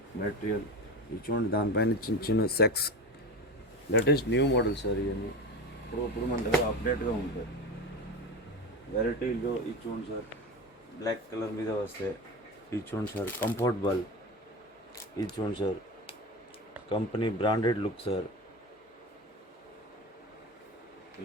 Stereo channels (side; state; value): both; normal; correlation 0.26